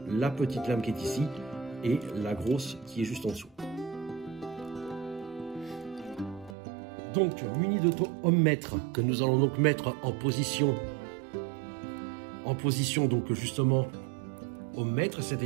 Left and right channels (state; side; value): drops out; left; at 6.6 s